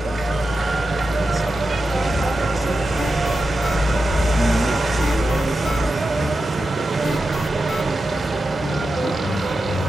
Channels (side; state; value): both; normal; correlation 0.90